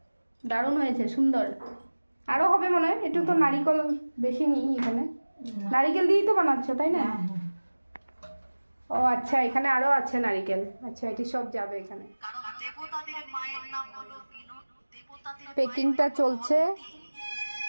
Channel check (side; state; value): both; inverted; correlation -1.00